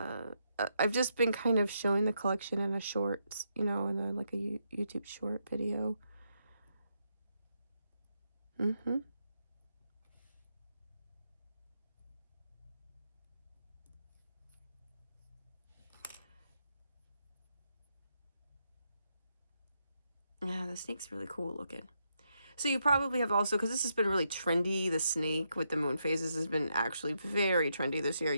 just been kind of showing the collection in a short, you know, in a, like a YouTube short video. Yeah, the snake's really cool looking. So you probably have also, because this has been really trendy, the snake with the moon phases has been actually very trendy this year.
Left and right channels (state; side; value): inverted; both; correlation -0.81